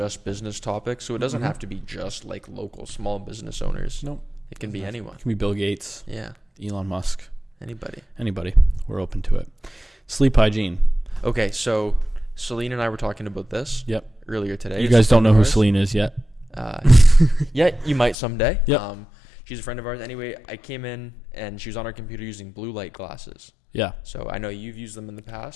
business topics, so it doesn't have to be just like local small business owners. Nope. It can be anyone. It can be Bill Gates. Yeah. Elon Musk. Anybody. We're open to it. Sleep hygiene. Okay, so Celine and I were talking about this earlier today. You guys don't know who Celine is yet? Yeah, you might someday. Yep. She's a friend of ours. Anyway, I came in and she was on her computer using blue light glasses. Yeah. So I know you've used them in the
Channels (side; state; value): right; drops out; at 18.2 s